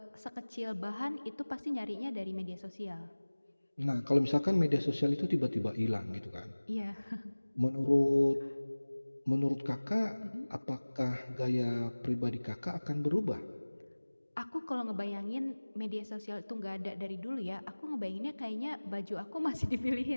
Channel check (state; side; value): inverted; both; correlation -1.00